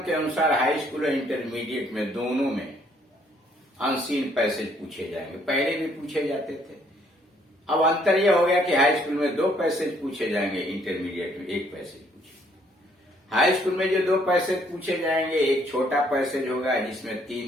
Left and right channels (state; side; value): normal; both; correlation 0.66